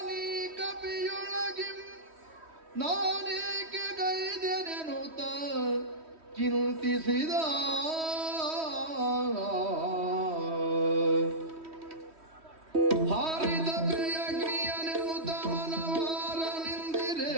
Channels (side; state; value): left; late; 3.1 ms